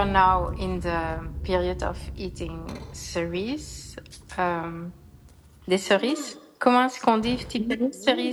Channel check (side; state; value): both; identical; correlation 1.00